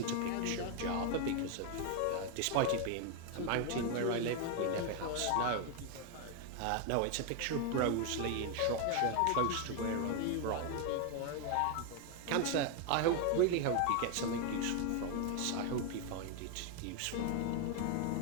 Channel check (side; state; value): both; different; correlation 0.01